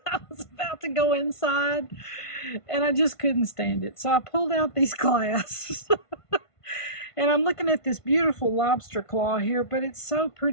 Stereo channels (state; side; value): late; right; 1.5 ms